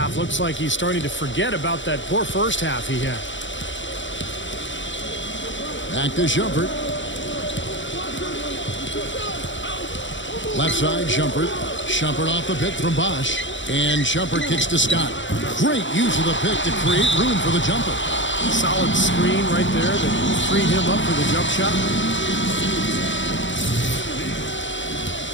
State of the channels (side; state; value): right; late; 0.55 ms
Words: Looks like he's starting to forget about that poor first half he had. Back to Shumpert. Left side, Shumpert. Shumpert off the pick from Bosch. And Shumpert kicks to Scott. Great use of the pick to create room for the jumper. Solid screen right there that freed him up for the jump shot.